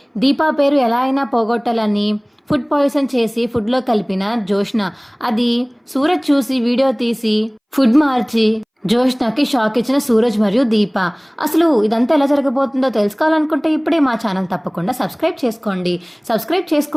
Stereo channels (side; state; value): both; identical; correlation 1.00